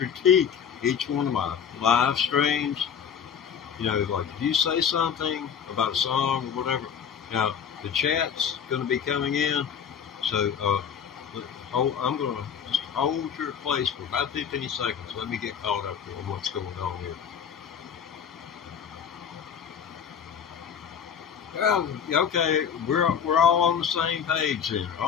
each one of my live streams. Like if you say something about a song or whatever, now the chat's going to be coming in. So I'm going to just hold your place for about 15 seconds. Let me get caught up on what's going on here. Well, okay, we're all on the same page here.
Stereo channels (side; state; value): right; quieter; 7.7 dB